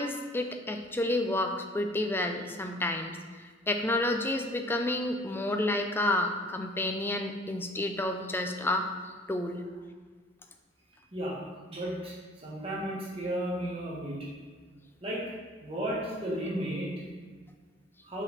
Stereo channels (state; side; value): normal; both; correlation 0.50